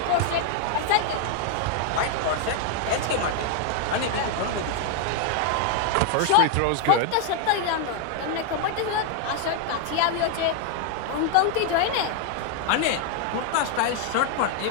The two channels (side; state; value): both; different; correlation 0.00